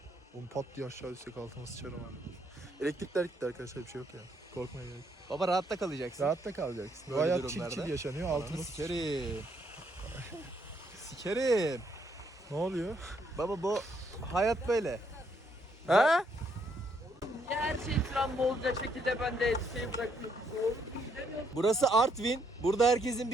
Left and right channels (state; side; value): normal; both; correlation 0.72